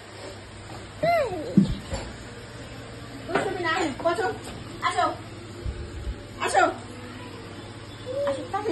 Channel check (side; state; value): both; identical; correlation 1.00